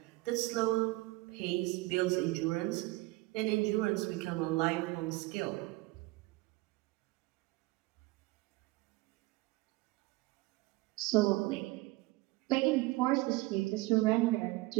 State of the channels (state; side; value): quieter; left; 21.6 dB